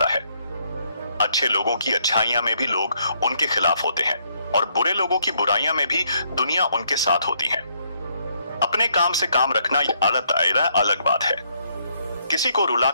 है। अच्छे लोगों की अच्छाइयां में भी लोग उनके खिलाफ होते हैं, और बुरे लोगों की बुराइयां में भी दुनिया उनके साथ होती है। अपने काम से काम रखना अलग दायरा, अलग बात है। किसी को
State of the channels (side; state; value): both; inverted; correlation -0.72